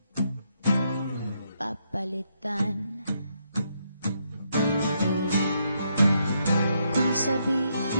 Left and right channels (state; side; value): inverted; both; correlation -0.77